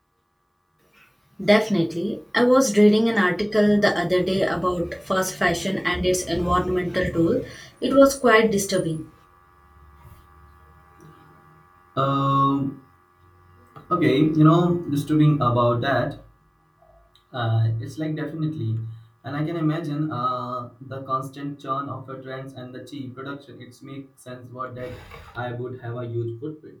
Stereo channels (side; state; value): both; identical; correlation 1.00